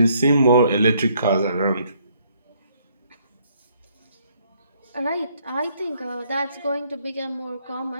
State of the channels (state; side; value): inverted; both; correlation -0.67